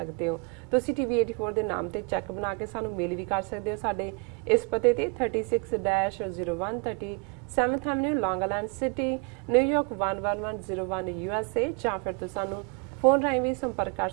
ਹੋ। ਤੁਸੀਂ ਟੀਵੀ 84 ਦੇ ਨਾਮ ਤੇ ਚੈੱਕ ਬਣਾ ਕੇ ਸਾਨੂੰ ਮੇਲ ਵੀ ਕਰ ਸਕਦੇ ਹੋ ਸਾਡੇ ਇਸ ਪਤੇ ਤੇ 36-0130 7th Avenue, Long Island City, New York 11101 USA, ਜਾਂ ਫਿਰ ਤੁਸੀਂ ਸਾਨੂੰ ਫੋਨ ਰਾਹੀਂ ਵੀ ਸੰਪਰਕ ਕਰ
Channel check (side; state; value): left; quieter; 31.8 dB